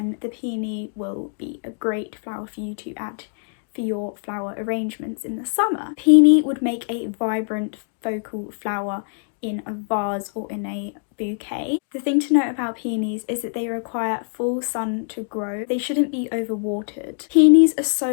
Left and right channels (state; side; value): silent; right; digital silence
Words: the Peony will be a great flower for you to add for your flower arrangements in the summer. Peony would make a vibrant focal flower in a vase or in a bouquet. The thing to note about peonies is that they require full sun to grow. They shouldn't be overwatered. Peonies are